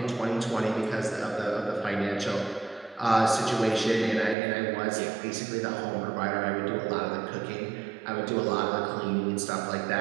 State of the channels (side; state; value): left; drops out; at 4.4 s